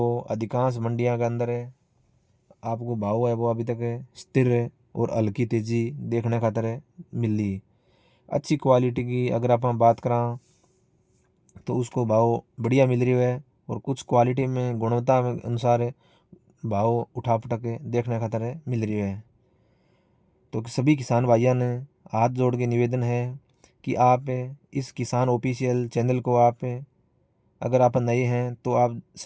अधिकांश मंडियों के अंदर आपको भाव है वो अभी तक स्थिर है और हल्की तेजी देखने खातर मिली। अच्छी क्वालिटी की अगर आप बात करा तो उसको भाव बढ़िया मिल रही है और कुछ क्वालिटी में गुणवत्ता में अनुसार भाव उठा पटक देखने खातर मिल रही है। तो सभी किसान भाइयों ने हाथ जोड़ के निवेदन है कि आप इस किसान ऑफिशियल चैनल को आप अगर आप नए हैं तो आप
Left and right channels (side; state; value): both; identical; correlation 1.00